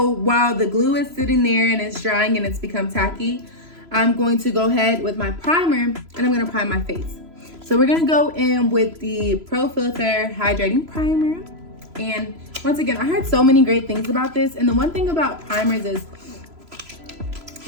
while the glue is sitting there and it's drying and it's become tacky, I'm going to go ahead with my primer and I'm gonna prime my face. So we're gonna go in with the Pro Filter Hydrating Primer. And once again, I heard so many great things about this. And the one thing about primers is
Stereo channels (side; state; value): left; late; 3.0 ms